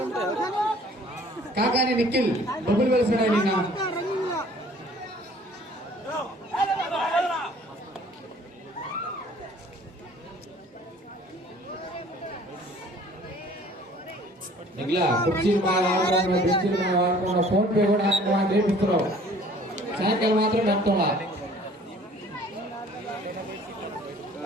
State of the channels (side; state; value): both; normal; correlation 0.53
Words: కాకాని నిఖిల్ బొబ్బులు వెలిసిన నిన్న ఇలా కుర్చీలు బాగా ఆడుతున్నా బెంచీలు బాగా ఆడుతున్నా ఫోన్ పే కూడా చేపిస్తున్నావు సాయంకాలం మాత్రం నడుతున్నా